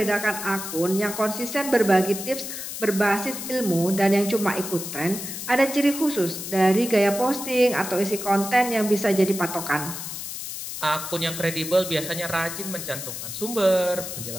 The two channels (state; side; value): noise; left; hiss, 7 dB below the sound